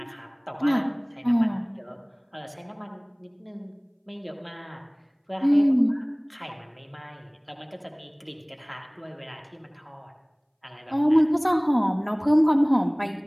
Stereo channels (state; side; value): identical; both; correlation 1.00